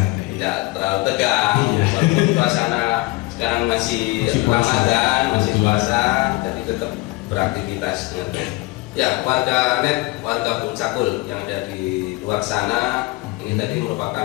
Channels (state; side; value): quieter; right; 22.1 dB